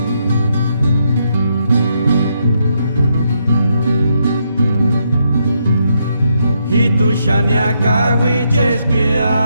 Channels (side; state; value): both; inverted; correlation -0.77